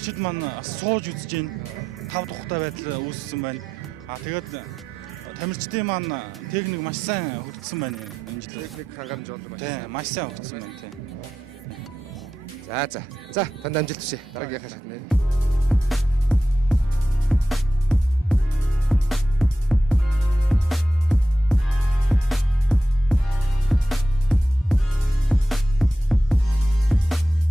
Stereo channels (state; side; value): normal; both; correlation 0.90